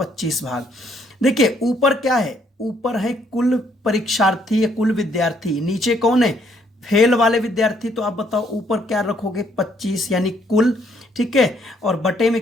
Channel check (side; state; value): both; normal; correlation 0.69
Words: भाग। देखिए ऊपर क्या है, ऊपर है कुल परीक्षार्थी या कुल विद्यार्थी, नीचे कौन है फेल वाले विद्यार्थी, तो आप बताओ ऊपर क्या रखोगे 25 यानी कुल, ठीक है, और बटे में